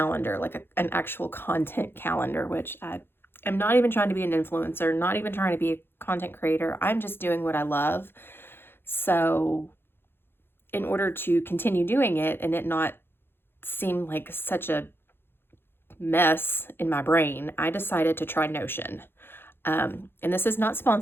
like an actual content calendar, which I am not even trying to be an influencer, not even trying to be a content creator. I'm just doing what I love. So, in order to continue doing it and it not seem like such a mess in my brain, I decided to try Notion. And this is not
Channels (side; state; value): right; late; 0.11 ms